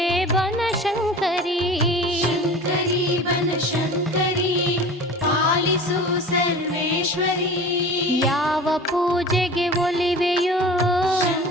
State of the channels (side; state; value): both; normal; correlation 0.38